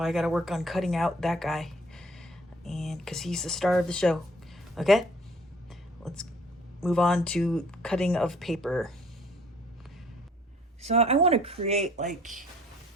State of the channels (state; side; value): normal; both; correlation 0.57